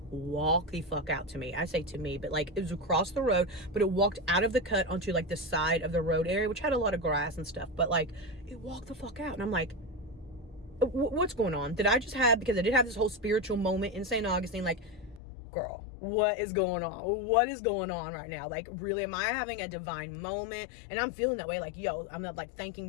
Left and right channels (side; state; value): right; drops out; at 15.2 s